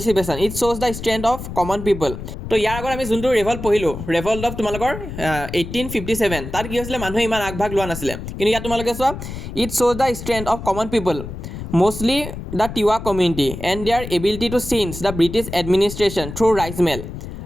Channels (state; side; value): noise; left; rumble, 9 dB below the sound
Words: ইট শ্ব'জ the strength of common people. তো ইয়াৰ আগত আমি যোনটো ৰেভল্ট পঢ়িলোঁ, ৰেভল্ট অফ তোমালোকৰ 1857, তাত কি হৈছিলে, মানুহে ইমান আগভাগ লোৱা নাছিলে। কিন্তু ইয়াত তোমালোকে চোৱা, ইট শ্ব'জ the strength of common people mostly the Tiwa community and their ability to change the British administration through Raij Mel.